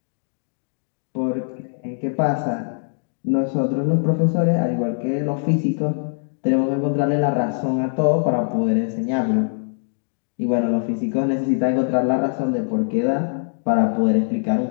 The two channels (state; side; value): silent; right; digital silence